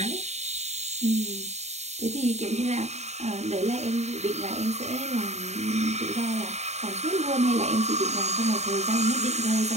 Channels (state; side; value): late; left; 0.32 ms